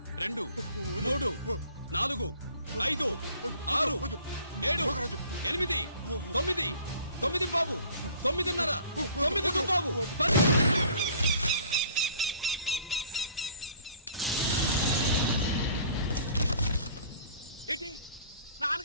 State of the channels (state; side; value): inverted; both; correlation -0.52